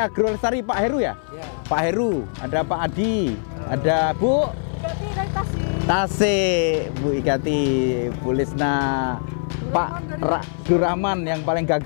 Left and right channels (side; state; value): right; silent; 60 dB below the other